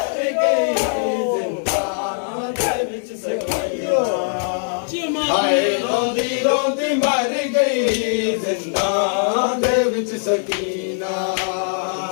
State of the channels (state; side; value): silent; right; 65 dB below the other